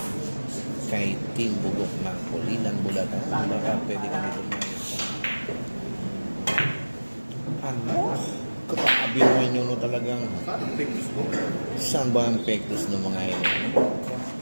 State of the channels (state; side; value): inverted; both; correlation -1.00